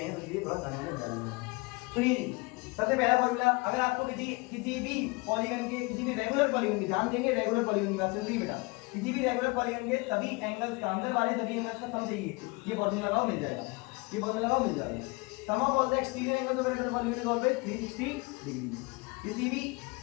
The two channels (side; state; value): right; quieter; 26.7 dB